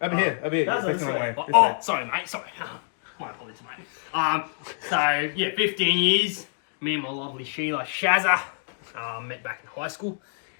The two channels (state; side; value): silent; right; digital silence